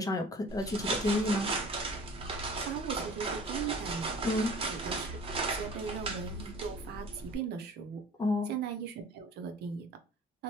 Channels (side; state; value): both; normal; correlation 0.45